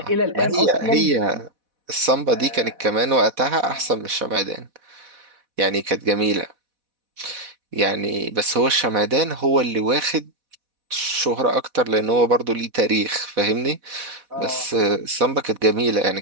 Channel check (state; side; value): late; left; 4.1 ms